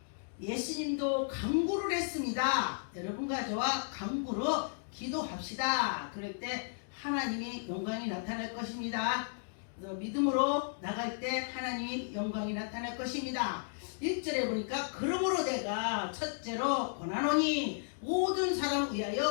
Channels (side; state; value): right; silent; digital silence